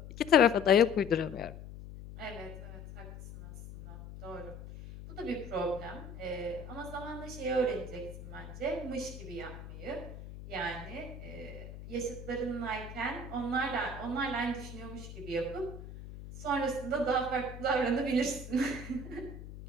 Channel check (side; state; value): left; noise; hum, 12 dB below the sound